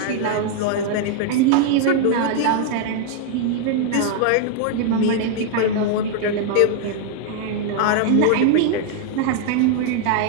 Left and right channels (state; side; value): different; both; correlation 0.00